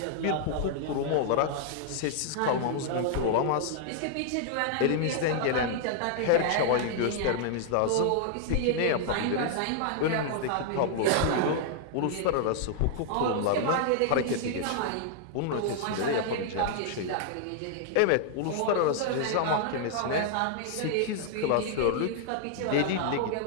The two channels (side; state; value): both; different; correlation -0.01